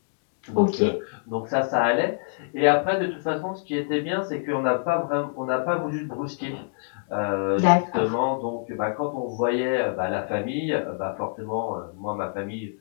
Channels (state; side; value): silent; right; digital silence